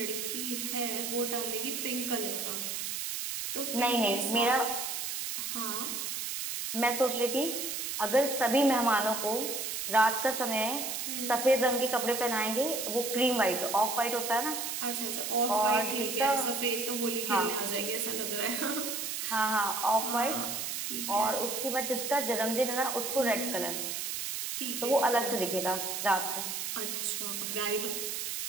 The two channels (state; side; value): noise; right; hiss, 3 dB below the sound